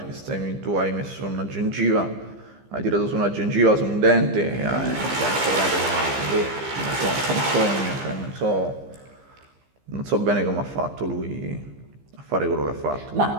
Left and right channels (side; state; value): left; late; 15 ms